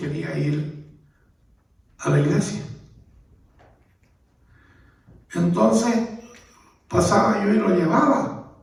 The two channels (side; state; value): both; identical; correlation 1.00